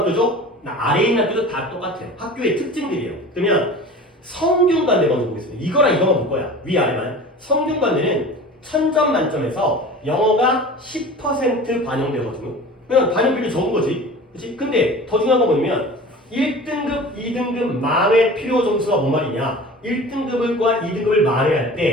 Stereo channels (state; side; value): normal; both; correlation 0.38